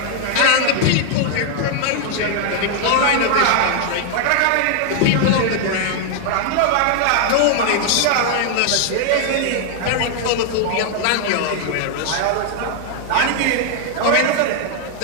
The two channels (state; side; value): different; both; correlation 0.00